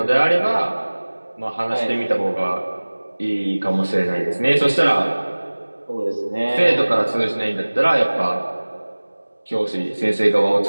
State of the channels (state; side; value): inverted; both; correlation -1.00